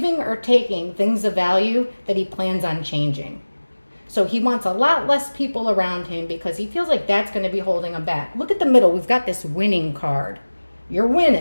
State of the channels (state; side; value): inverted; both; correlation -1.00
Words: or taking things of value that he plans on changing. So he wants a lot less people around him because he feels like that's going to be holding him back. Look at the middle. We've got this winning card. You're